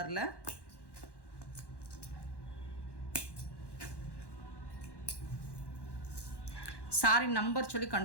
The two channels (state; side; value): late; right; 1.1 ms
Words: சாரி நம்பர் சொல்லி